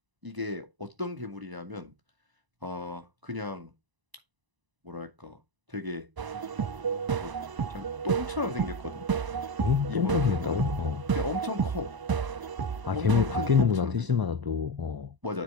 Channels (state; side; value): late; left; 1.0 ms